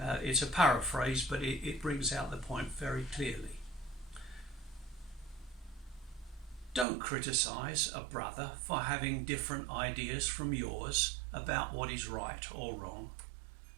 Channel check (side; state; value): left; drops out; at 6.9 s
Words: It's a paraphrase, but it brings out the point very clearly. Don't criticise a brother for having different ideas from yours about what is right or wrong.